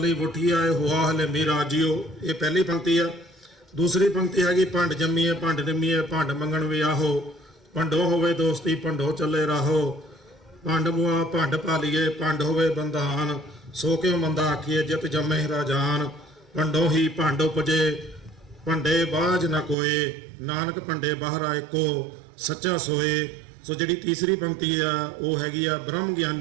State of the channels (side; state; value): left; drops out; at 19.8 s